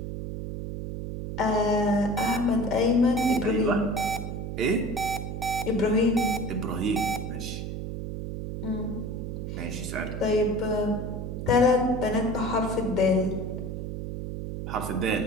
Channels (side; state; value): right; noise; hum, 5 dB below the sound